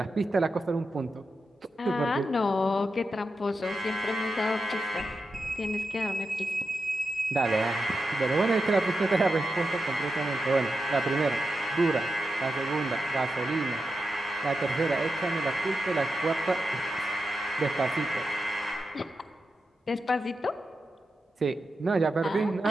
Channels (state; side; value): normal; both; correlation 0.88